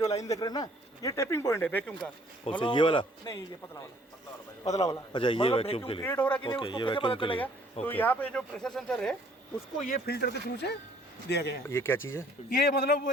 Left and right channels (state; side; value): normal; both; correlation 0.59